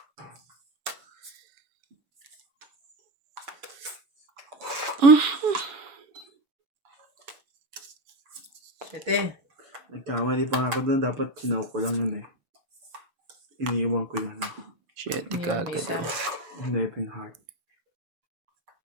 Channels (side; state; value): left; late; 6.8 ms